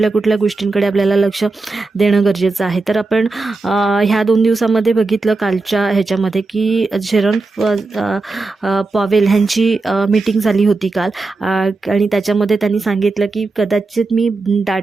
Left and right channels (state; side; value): quieter; left; 3.6 dB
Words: गोष्टींकडे आपल्याला लक्ष देणं गरजेचं आहे. तर आपण ह्या 2 दिवसामध्ये बघितलं कालच्या ह्याच्यामध्ये की जेरोम पॉवेल ह्यांची मीटिंग झाली होती काल, आणि त्याच्यामध्ये त्यांनी सांगितलं की कदाचित मी